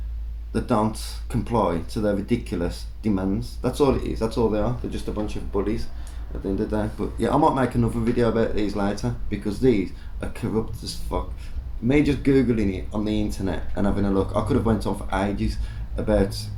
that don't comply to their ridiculous demands. That's all it is. That's all they are. They're just a bunch of bullies at the end of the day. But yeah, I might make another video about these later, because these are corrupt as fuck. Me just googling it on the internet and having a look, I could have went on for ages about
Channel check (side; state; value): both; identical; correlation 1.00